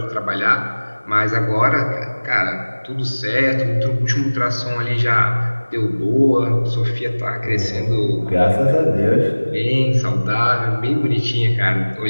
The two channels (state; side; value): inverted; both; correlation -1.00